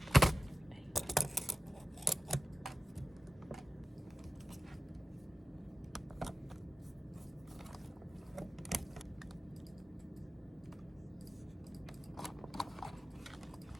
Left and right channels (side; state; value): both; normal; correlation 0.97